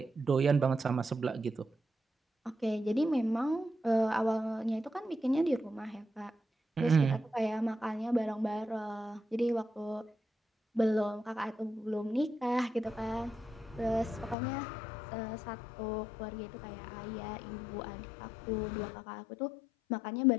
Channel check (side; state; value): right; drops out; at 14.4 s